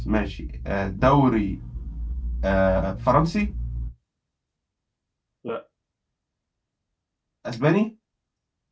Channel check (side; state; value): both; identical; correlation 1.00